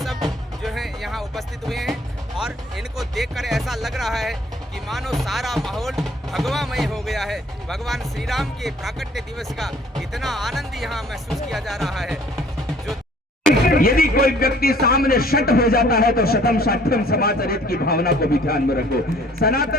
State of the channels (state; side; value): normal; both; correlation 0.56